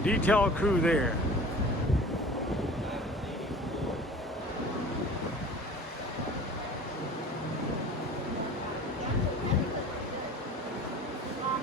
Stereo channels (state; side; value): normal; both; correlation 0.42